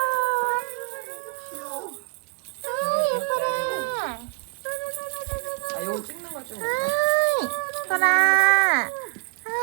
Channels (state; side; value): quieter; left; 36.3 dB